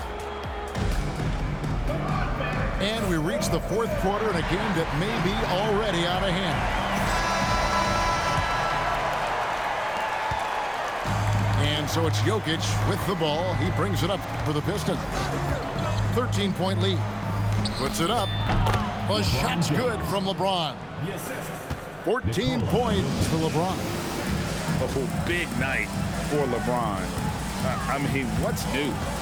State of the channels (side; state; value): both; identical; correlation 1.00